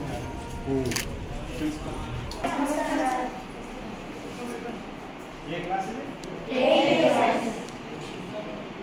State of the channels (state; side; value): identical; both; correlation 1.00